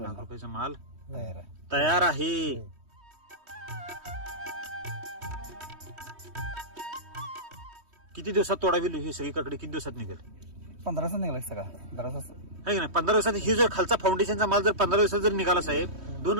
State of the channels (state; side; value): late; left; 3.1 ms